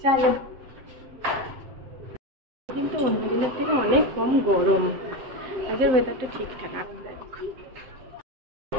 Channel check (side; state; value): left; late; 7.7 ms